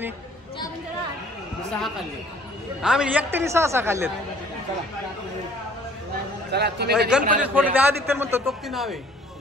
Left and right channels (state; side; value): normal; both; correlation 0.55